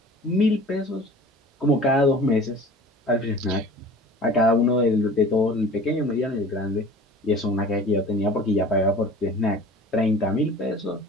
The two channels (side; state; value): both; normal; correlation 0.42